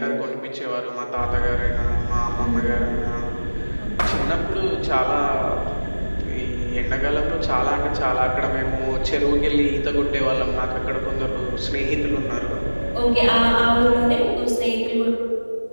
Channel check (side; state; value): both; inverted; correlation -1.00